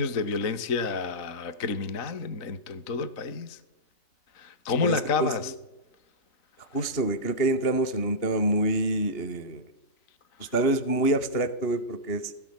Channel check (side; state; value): right; late; 2.9 ms